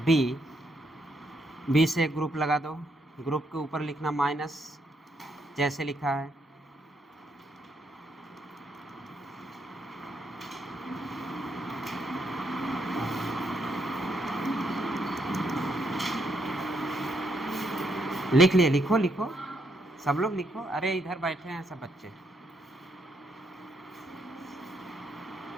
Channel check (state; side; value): normal; both; correlation 0.76